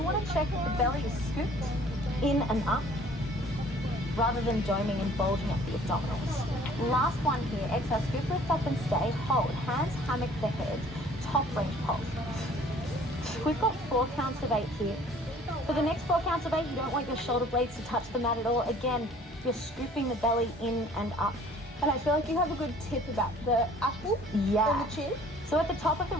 want to check that the belly is scooped in and up rather than doming and bulging up the abdominals. Last one here. Exhale, scoop, lift up and stay. Hold. Hands hammock the head. Top range pulse. We've got 4 counts of 8 here. For the next 4 counts of 8, you don't want your shoulder blades to touch the mat at all. Again, you're scooping the belly in and up. And I feel like you have a good tip about the apple and the chin. So at the top of the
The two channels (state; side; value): normal; both; correlation 0.53